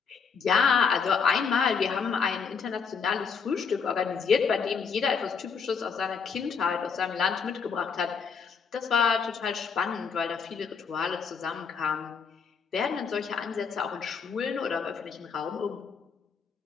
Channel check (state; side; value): quieter; right; 6.0 dB